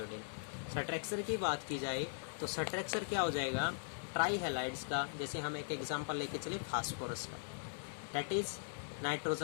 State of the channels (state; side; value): silent; right; 51 dB below the other